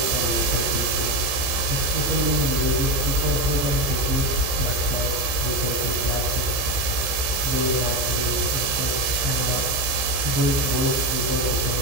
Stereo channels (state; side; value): late; left; 15 ms